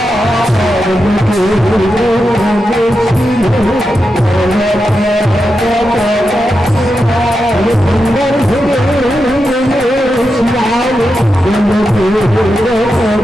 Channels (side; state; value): both; normal; correlation 0.88